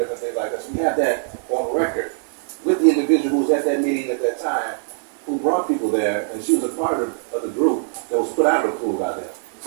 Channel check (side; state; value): left; silent; digital silence